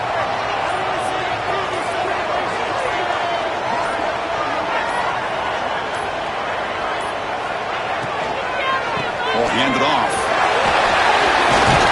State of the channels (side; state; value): both; identical; correlation 1.00